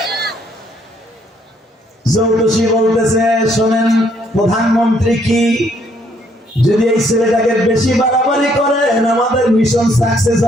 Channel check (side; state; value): both; normal; correlation 0.68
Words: জ্যোতিষী বলতেছে, শোনেন প্রধানমন্ত্রী কি, যদি এই ছেলেটাকে বেশি বাড়াবাড়ি করেন আমাদের মিশন সাকসেস